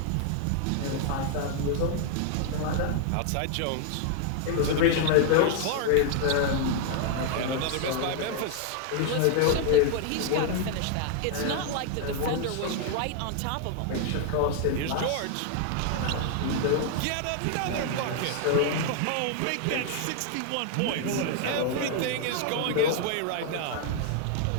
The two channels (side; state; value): both; different; correlation 0.00